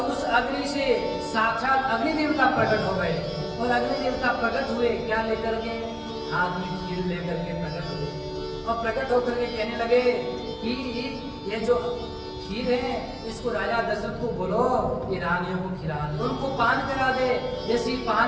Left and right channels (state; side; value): identical; both; correlation 1.00